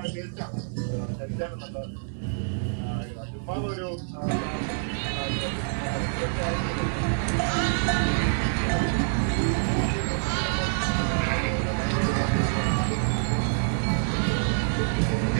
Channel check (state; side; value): silent; left; digital silence